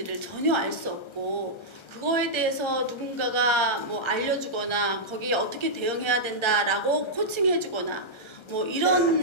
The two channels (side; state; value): right; late; 1.3 ms